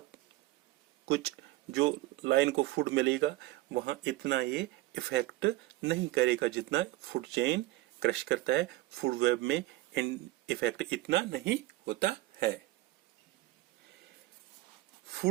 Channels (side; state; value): left; quieter; 18.3 dB